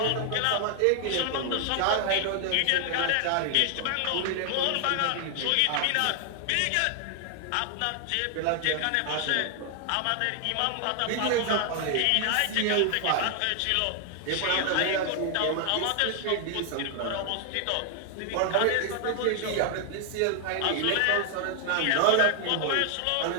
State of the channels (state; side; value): different; both; correlation 0.00